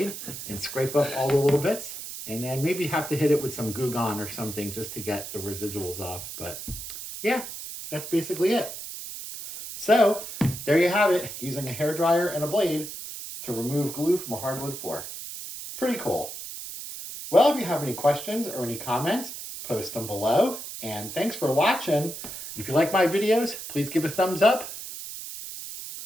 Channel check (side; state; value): right; noise; hiss, 9 dB below the sound